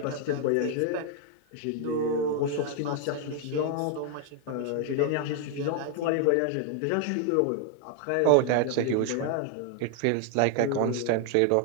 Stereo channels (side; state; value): both; different; correlation 0.00